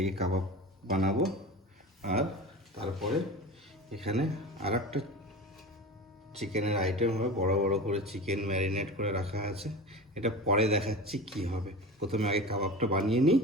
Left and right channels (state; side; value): normal; both; correlation 0.31